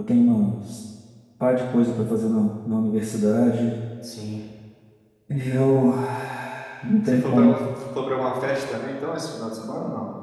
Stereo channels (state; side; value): identical; both; correlation 1.00